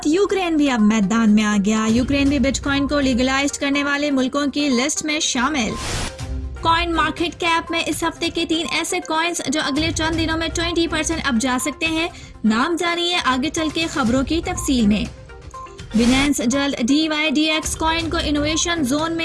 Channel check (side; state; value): both; identical; correlation 1.00